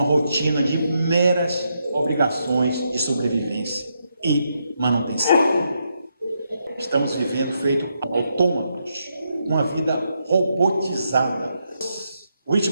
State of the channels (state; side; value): inverted; both; correlation -0.80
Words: rotina de meras obrigações de sobrevivência e manutenção. Estamos vivendo feito autômatos, uma vida robotizada.